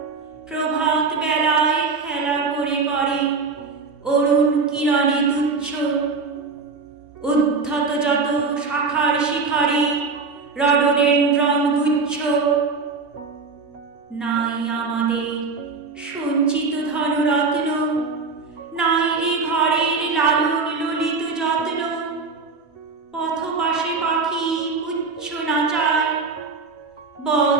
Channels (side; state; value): left; quieter; 4.5 dB